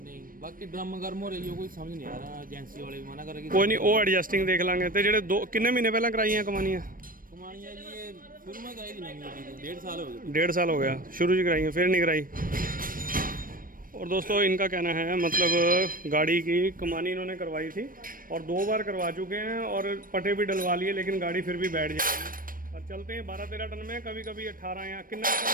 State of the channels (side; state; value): left; late; 0.41 ms